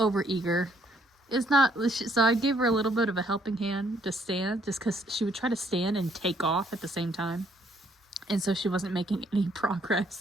It's not, so I gave her a little bit of a helping hand to stand, just because she would try to stand and take off at the same time. And so she wasn't making any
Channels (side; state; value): both; normal; correlation 0.67